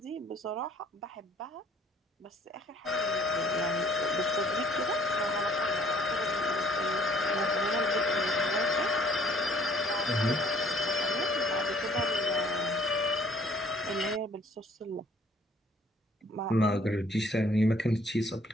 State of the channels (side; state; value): both; normal; correlation 0.59